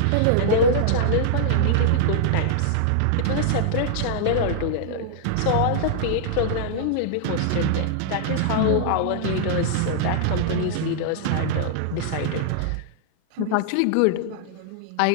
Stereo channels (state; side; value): different; both; correlation -0.01